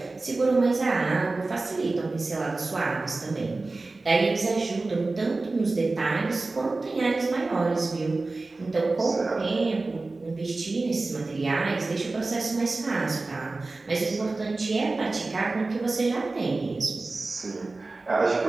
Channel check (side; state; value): left; quieter; 3.4 dB